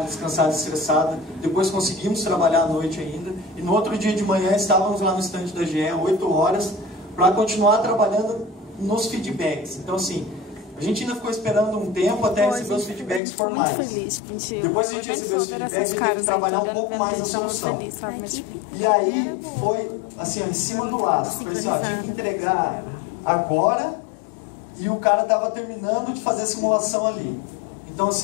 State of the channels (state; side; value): drops out; right; at 13.2 s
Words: descansada, estressada. Depois conseguimos trabalhar à noite ainda. E no outro dia de manhã estávamos lá no stand da GE, 8 horas, para continuar trabalhando nos feedbacks. Então, assim, a gente ainda ficou esperando um tempo até receber os feedbacks formais. Depois que a gente recebeu os feedbacks, a gente teve que trabalhar um pouco mais na solução. E aí foi assim, ó, em cima do laço. Foi assim, ó, tinha que entregar agora. E o cara estava terminando de fazer a simulação ali. Então,